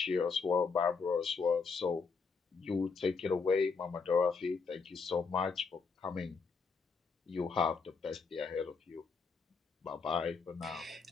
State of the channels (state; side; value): quieter; right; 4.9 dB